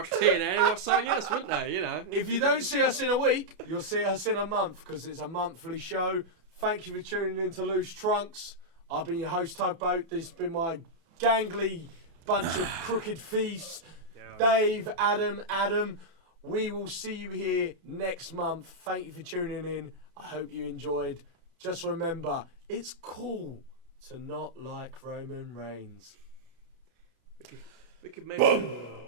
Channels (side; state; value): left; late; 33 ms